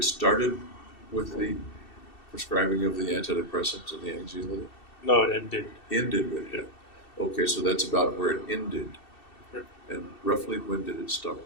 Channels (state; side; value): late; right; 2.7 ms